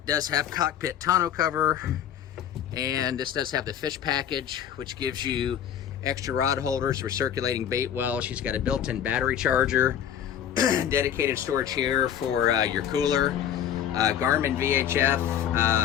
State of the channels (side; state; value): right; quieter; 9.6 dB